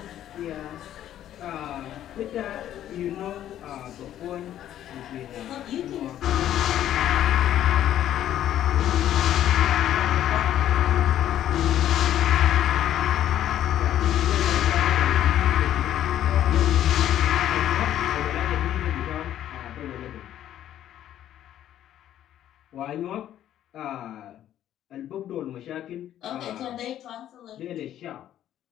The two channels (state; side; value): quieter; right; 11.6 dB